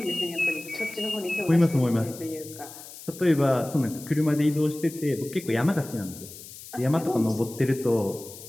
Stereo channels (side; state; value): left; noise; hiss, 15 dB below the sound